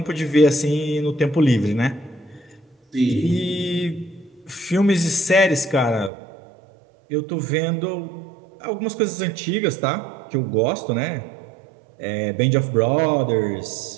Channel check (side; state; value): left; drops out; at 6.1 s